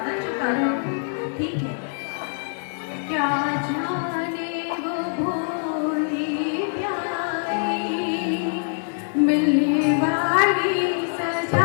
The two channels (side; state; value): right; silent; 63 dB below the other